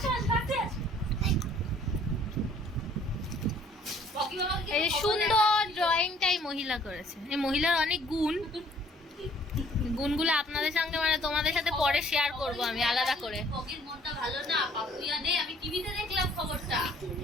এই সুন্দর ড্রয়িংটাই মহিলা করেছে। এই মহিলার অনেক গুণগুলো আপনাদের সঙ্গে তোমাদের সাথে পরে শেয়ার করব আমি আলাদা করে। মনটা ভালো না, পাপুয়া নেই, আমি টিভিতে দেখলাম খবরটা।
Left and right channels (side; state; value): both; normal; correlation 0.58